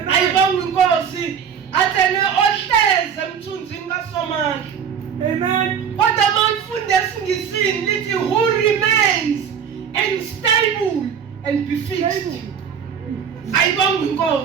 Ayibonga inkosi. Athene ohleze emthunzini kaSomandla. Amen. Kodwa mawufunda esingisini lithi who remains and stable and be fixed. ayibonga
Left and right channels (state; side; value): quieter; left; 7.6 dB